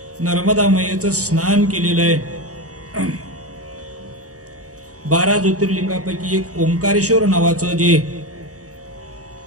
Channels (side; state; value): left; late; 0.66 ms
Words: नर्मदा मैयेचं स्नान केलेलं आहे. 12 ज्योतिर्लिंगापैकी एक ओंकारेश्वर नावाचं जे